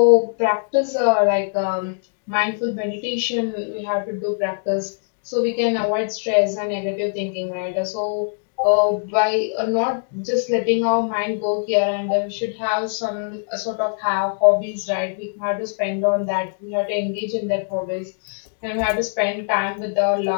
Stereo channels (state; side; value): silent; right; digital silence